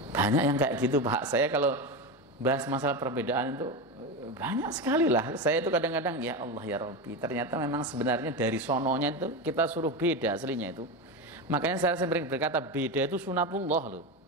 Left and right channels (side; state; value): both; normal; correlation 0.18